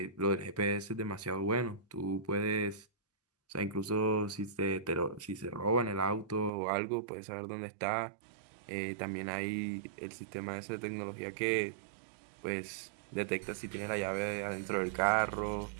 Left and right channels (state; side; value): drops out; left; at 6.5 s